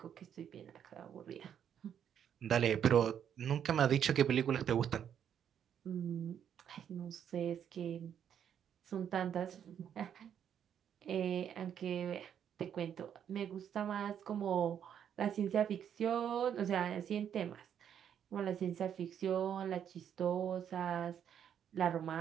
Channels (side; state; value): left; quieter; 8.9 dB